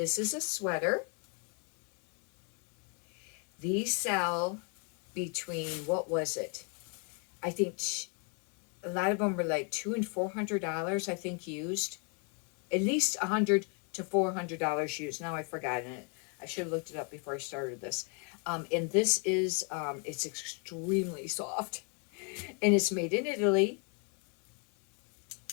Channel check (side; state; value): right; quieter; 38.1 dB